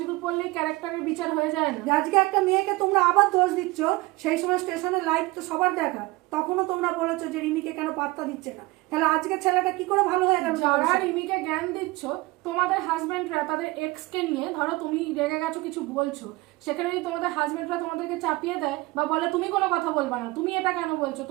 পরলেই ক্যারেক্টারের বিচার হয়ে যায় না। আজকে একটা মেয়েকে তোমরা আবার দোষ দিচ্ছ, সেই সময় স্টেশনে লাইভ তো সবার দেখা, তখনও তোমরা বলেছো যে রিমিকে কেন পাত্তা দিচ্ছে না। তাহলে আজকে ছেলেটা কি করে ভালো হয়ে গেল? যারা রিমিকে জ্ঞান দিচ্ছ, তোমাদের হাজবেন্ডরা তাদের এক্স কে নিয়ে, ধরো তুমি রেগে গেছো কিছু বলছো, সেখানে যদি তোমাদের হাজবেন্ডরা তোমাদেরকে চাপিয়ে দেয় বা বলে তুমি কোনো কথা বলবা না, তুমি এটা কেন বলছো,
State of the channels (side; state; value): left; quieter; 21.8 dB